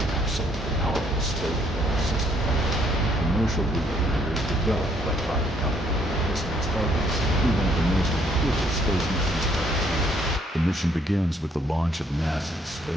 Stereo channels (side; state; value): both; normal; correlation 0.67